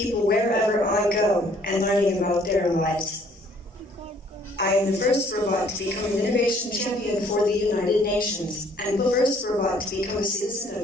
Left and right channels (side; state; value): both; normal; correlation 0.60